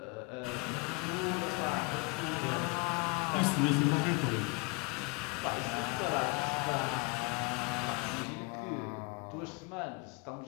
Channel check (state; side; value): quieter; right; 29.1 dB